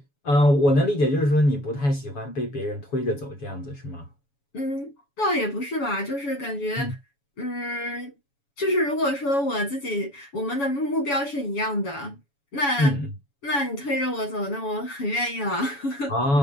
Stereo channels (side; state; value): right; late; 7.1 ms